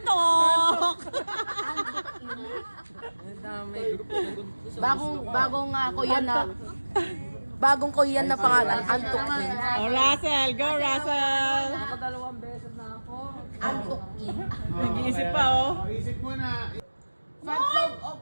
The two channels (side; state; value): both; inverted; correlation -1.00